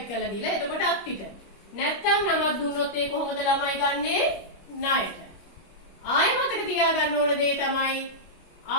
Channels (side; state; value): right; late; 25 ms